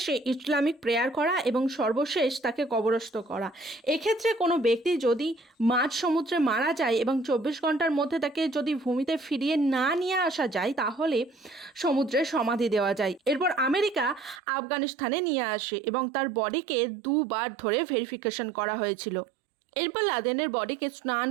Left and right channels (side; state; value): left; drops out; at 14.4 s